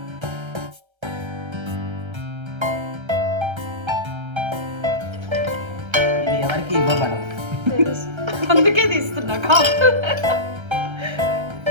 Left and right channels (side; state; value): left; late; 1.3 ms